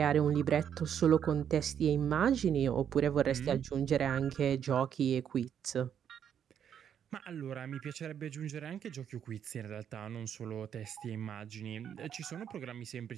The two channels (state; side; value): quieter; left; 8.8 dB